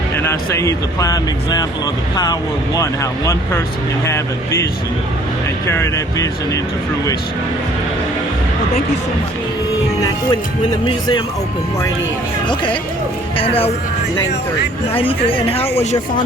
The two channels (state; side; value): normal; both; correlation 0.57